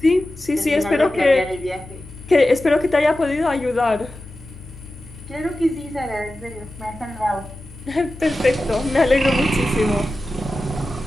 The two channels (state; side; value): noise; left; hum, 18 dB below the sound